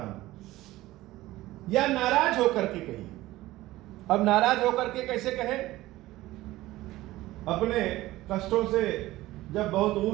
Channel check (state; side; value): quieter; left; 17.1 dB